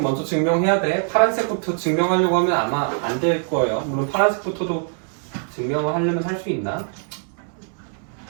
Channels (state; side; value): silent; left; 55 dB below the other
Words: 먼저 증명해야 돼. 파란색부터 증명하려고 하면 아마 안 될 거예요. 물론 파란색부터도 증명을 하려면 할 수 있나?